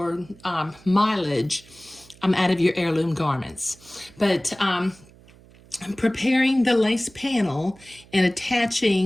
mileage out of your heirloom garments. But preparing the lace panel and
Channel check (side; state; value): right; noise; hum, 25 dB below the sound